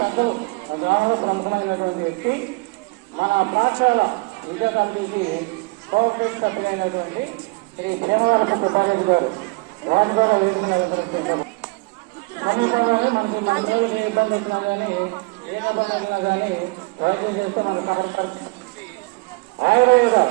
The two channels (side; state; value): left; quieter; 26.3 dB